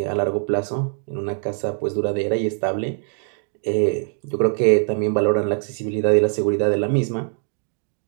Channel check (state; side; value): silent; left; 64 dB below the other